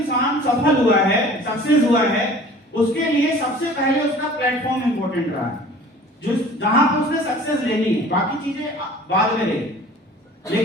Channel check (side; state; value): both; normal; correlation 0.46